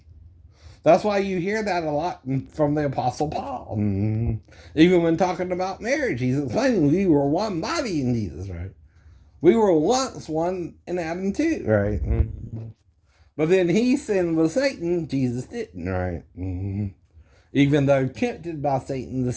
That's why you hear that a lot from the Apostle Paul. Even when talking about marriage, he's explaining we were one body in Jesus, right? We were once one in Adam too, right? But then he sinned with Satan, Jesus didn't, right? Even though tempted by Satan to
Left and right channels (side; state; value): both; identical; correlation 1.00